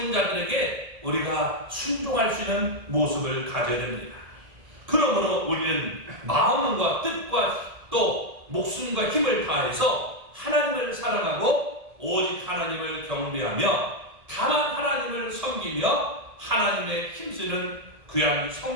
자들에게 우리가 순종할 수 있는 모습을 가져야 됩니다. 그러므로 우리는 마음과 뜻과 또 목숨과 힘을 다해서 하나님을 사랑하고 오직 하나님을 경배하며 다만 하나님을 섬기며 하나님의 힘쓰는 귀한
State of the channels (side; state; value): left; late; 1.7 ms